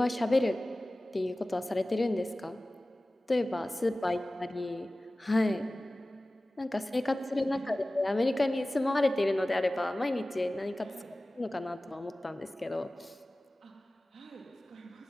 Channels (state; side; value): normal; both; correlation 0.97